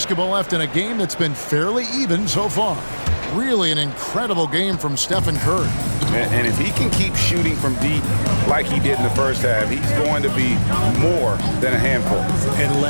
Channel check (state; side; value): inverted; both; correlation -1.00